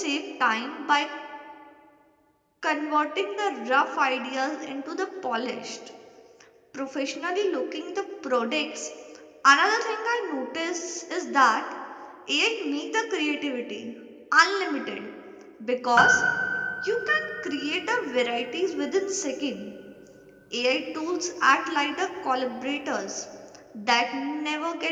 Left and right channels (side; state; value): both; identical; correlation 1.00